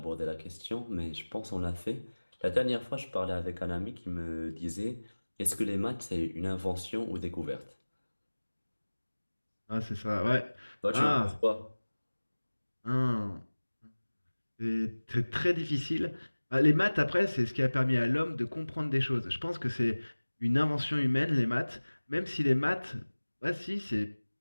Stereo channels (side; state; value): both; inverted; correlation -1.00